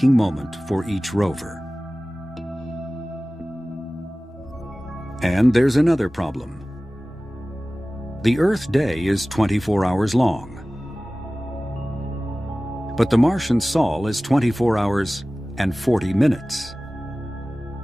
moment for each rover. And there's another problem. The Earth day is 24 hours long. But the Martian Sol is 24 hours and 40 minutes.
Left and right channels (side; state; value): both; normal; correlation 0.97